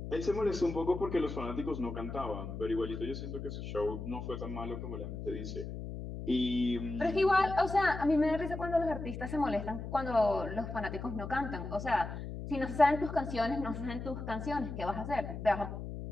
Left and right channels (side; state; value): left; noise; hum, 7 dB below the sound